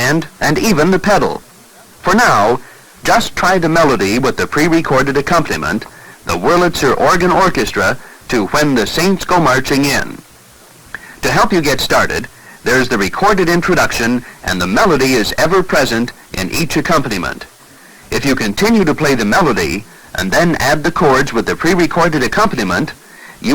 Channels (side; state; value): both; identical; correlation 1.00